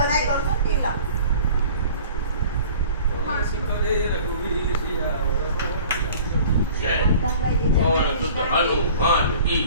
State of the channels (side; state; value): both; inverted; correlation -0.47